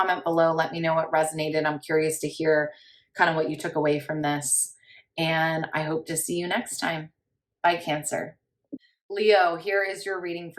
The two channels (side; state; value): both; identical; correlation 1.00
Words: below. Let me know what resonated. I'm curious to hear kind of what you took away from this. And I hope to see you next time. Bye, Cancer. Leo, here is your reading